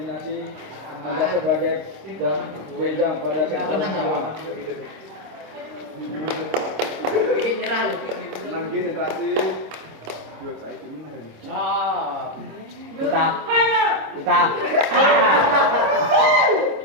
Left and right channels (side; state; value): left; late; 26 ms